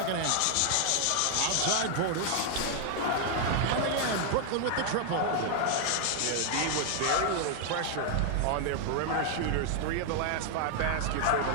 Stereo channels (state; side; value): different; both; correlation 0.00